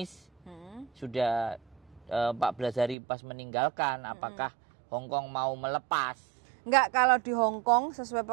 sudah 14 hari pas meninggalkan, apakah Hong Kong mau melepas? Enggak, kalau di Hong Kong sesuai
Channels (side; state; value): left; drops out; at 3.0 s